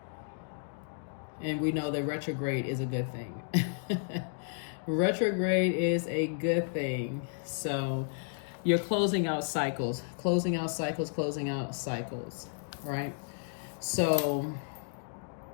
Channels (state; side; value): silent; right; digital silence